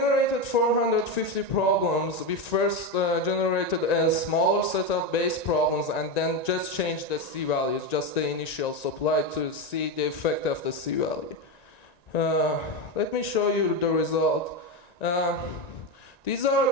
450 problems. We first generated a smaller set of base problems and then just changed the C values, just the initial supply, to see the effect of the C value. Let me show you the result. These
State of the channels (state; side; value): late; right; 1.9 ms